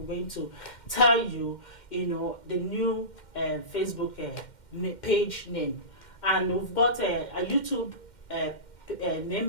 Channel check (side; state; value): right; late; 2.1 ms